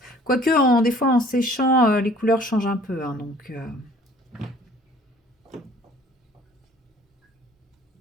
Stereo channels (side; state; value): both; normal; correlation 0.53